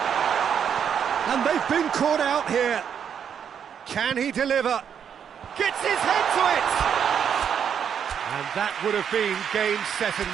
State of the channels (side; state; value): left; quieter; 8.0 dB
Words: And they've been caught out here. Can he deliver? Gets his head to it! And that would have been game, set and